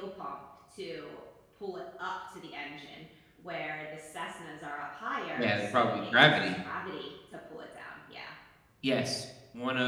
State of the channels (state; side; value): identical; both; correlation 1.00